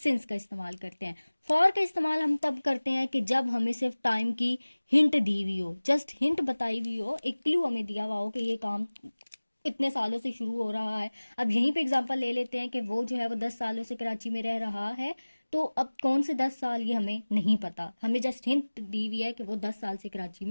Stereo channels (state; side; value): inverted; both; correlation -1.00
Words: का इस्तेमाल करते हैं। फॉर का इस्तेमाल हम तब करते हैं कि जब हमें सिर्फ टाइम की हिंट दी हुई हो, जस्ट हिंट बताई हुई हो, एक क्लू हमें दिया हुआ हो कि ये काम इतने सालों से शुरू हो रहा है। अब यहीं पे एग्जांपल ले लेते हैं कि वो जो है वो 10 सालों से कराची में रह रहा है, तो अब कौन से 10 साल ये हमें नहीं पता, हमें जस्ट हिंट दी हुई है कि वो 10 साल से कराची